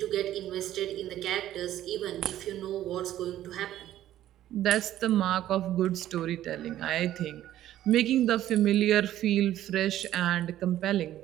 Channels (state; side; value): quieter; left; 12.9 dB